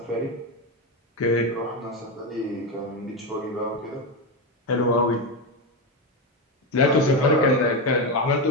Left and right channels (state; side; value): normal; both; correlation 0.12